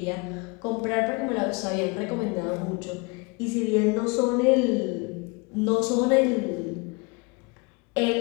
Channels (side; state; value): right; quieter; 28.8 dB